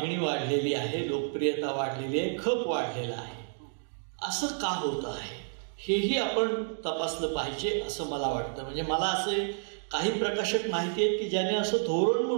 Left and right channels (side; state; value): left; silent; digital silence